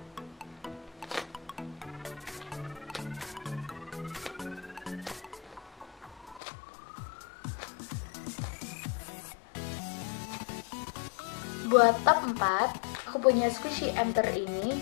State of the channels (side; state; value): right; drops out; at 6.4 s